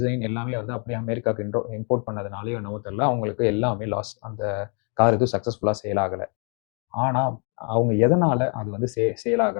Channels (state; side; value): quieter; right; 38.6 dB